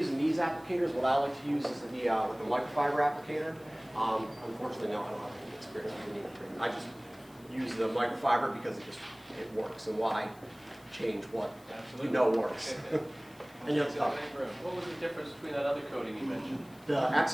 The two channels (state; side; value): noise; left; hiss, 27 dB below the sound